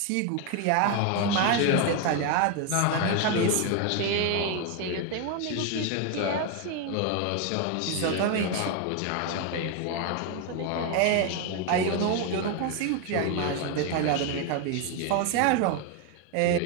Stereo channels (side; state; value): both; different; correlation 0.01